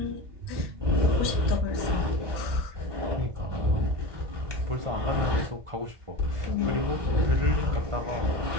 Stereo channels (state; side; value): late; left; 1.2 ms